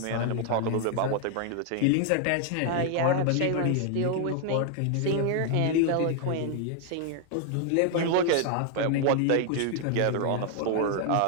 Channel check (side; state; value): both; different; correlation 0.00